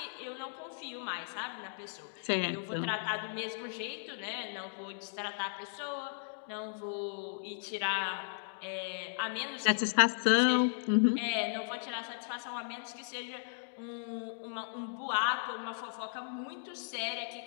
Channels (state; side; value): silent; right; digital silence